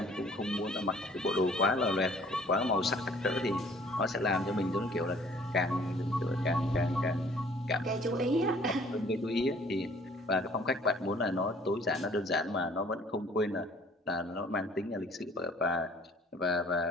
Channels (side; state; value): both; normal; correlation 0.55